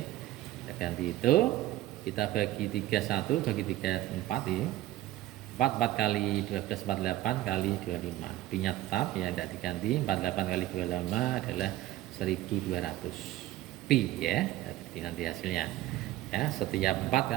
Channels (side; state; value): left; quieter; 15.3 dB